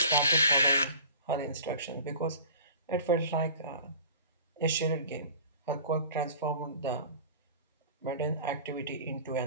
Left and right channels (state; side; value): inverted; both; correlation -0.42